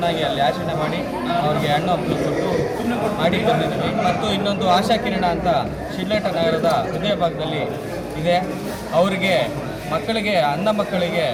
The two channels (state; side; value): identical; both; correlation 1.00